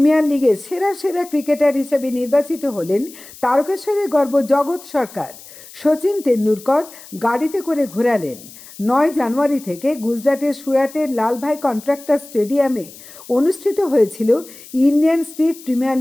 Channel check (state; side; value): noise; left; hiss, 19 dB below the sound